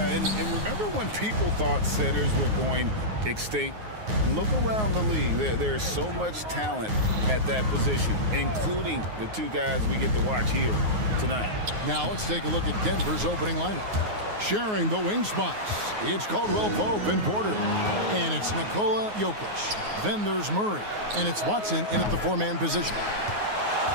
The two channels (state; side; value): late; left; 9.5 ms